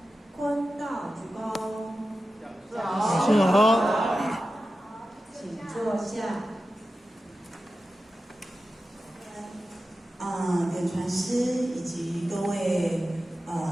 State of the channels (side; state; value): both; normal; correlation 0.93